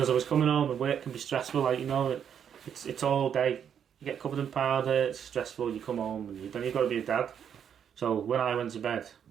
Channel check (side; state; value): left; quieter; 8.4 dB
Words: I was coming home and work can be stressful, like, you know, it's all day. You get covered in powder, it's stressful, you come home and then you've got to be a dad. So when I went to bed,